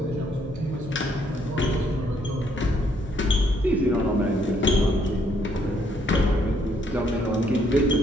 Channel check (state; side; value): normal; both; correlation 0.69